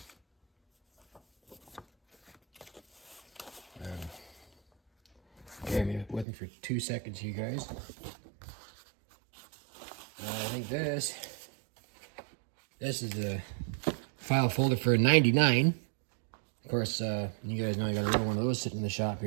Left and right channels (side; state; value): left; drops out; at 6.2 s